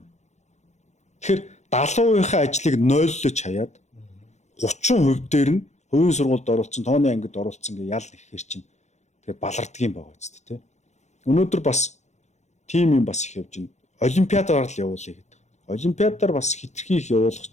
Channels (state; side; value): late; right; 0.33 ms